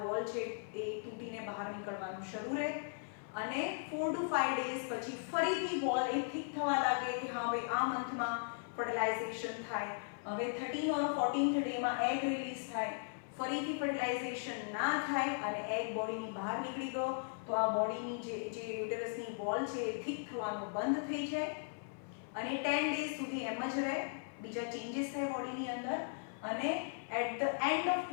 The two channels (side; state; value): right; silent; 53 dB below the other